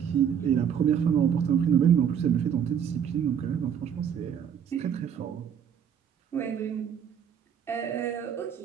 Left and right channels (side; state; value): left; quieter; 8.2 dB